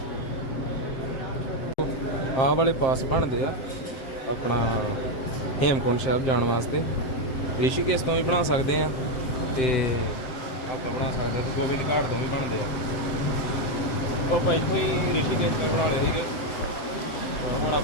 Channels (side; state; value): right; late; 7.6 ms